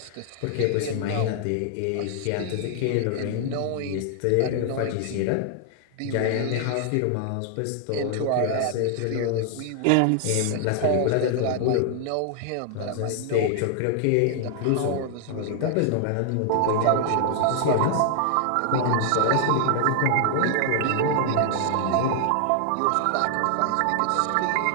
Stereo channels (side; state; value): both; different; correlation 0.00